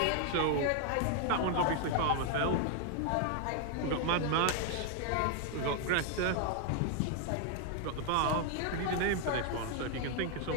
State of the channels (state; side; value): different; both; correlation 0.00